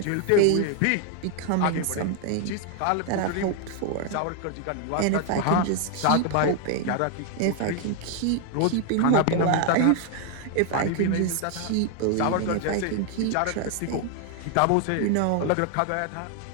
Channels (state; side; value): different; both; correlation 0.00